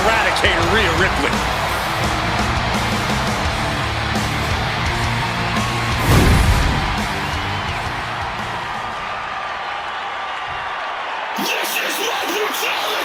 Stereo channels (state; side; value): identical; both; correlation 1.00